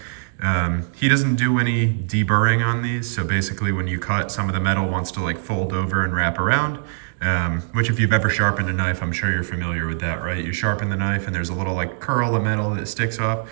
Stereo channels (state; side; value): silent; left; digital silence